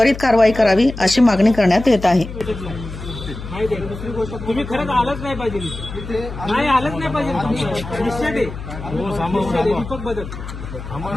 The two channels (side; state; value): left; noise; hum, 10 dB below the sound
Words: कारवाई करावी अशी मागणी करण्यात येत आहे। दुसरी गोष्ट तुम्ही खरंच आलंच नाही पाहिजे, नाही आलंच नाही पाहिजे। निश्चित आहे दीपक बदल